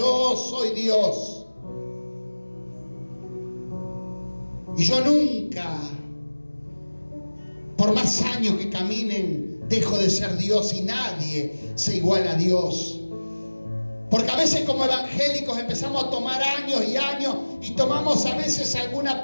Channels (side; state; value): both; inverted; correlation -1.00